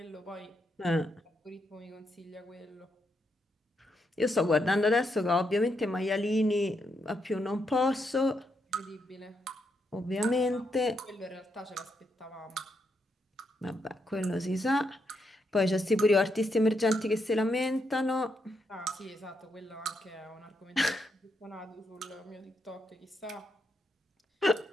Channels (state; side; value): normal; both; correlation 0.80